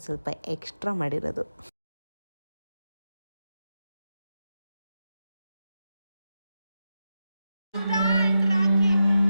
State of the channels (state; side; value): inverted; both; correlation -0.88